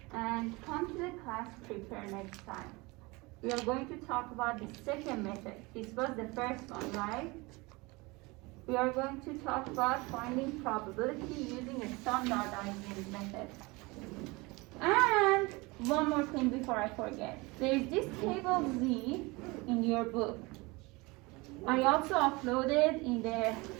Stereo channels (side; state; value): left; quieter; 24.5 dB